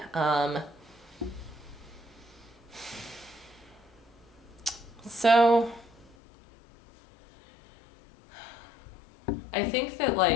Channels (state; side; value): drops out; right; at 6.2 s